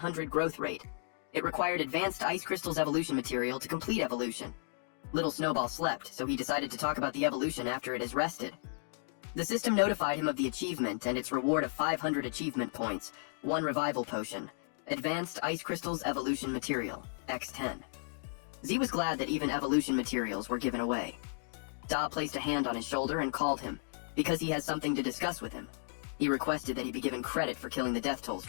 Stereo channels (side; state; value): right; silent; digital silence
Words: growth rate. It required advanced Ice Crystal's evolution material to complete evolution. Little Snowball slept, so he decided to talk about the evolution after it has rested. The system notified him of the achievement and its reward of 500 achievement points, 1 revival potion, advanced Ice Crystal's evolution material, X10. Z was glad that even evolution materials were given away. Da placed a hand on his shoulder and called him, because he has something to discuss with him. He requested that he be given credit for killing the Death Toll